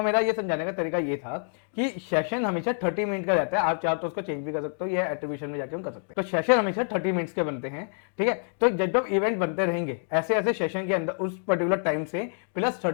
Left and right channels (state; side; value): silent; right; 60 dB below the other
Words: मेरा ये समझाने का तरीका ये था कि सेशन हमेशा 30 मिनट का रहता है, आप चाहो तो उसको चेंज भी कर सकते हो, ये एट्रीब्यूशन में जाके हम कर सकते हैं। तो सेशन हमेशा 30 मिनट्स के बनते हैं, ठीक है। तो जब जब इवेंट बनते रहेंगे ऐसे ऐसे सेशन के अंदर उस पर्टिकुलर टाइम से प्लस